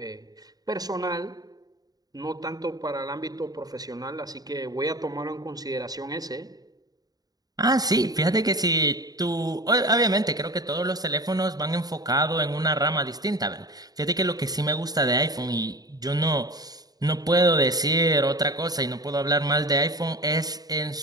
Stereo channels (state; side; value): late; left; 0.18 ms